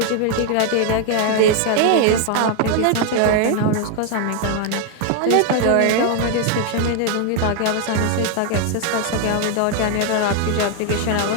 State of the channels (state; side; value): different; both; correlation 0.00